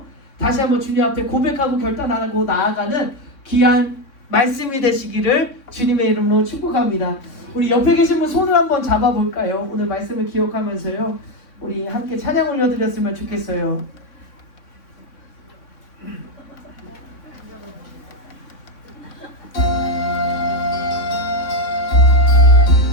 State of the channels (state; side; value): late; right; 3.6 ms